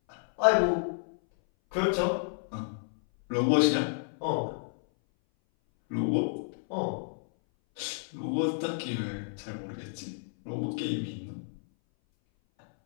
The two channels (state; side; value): silent; right; 57 dB below the other